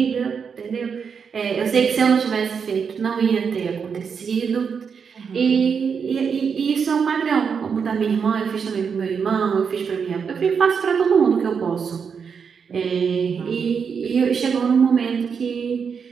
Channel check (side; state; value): left; quieter; 6.3 dB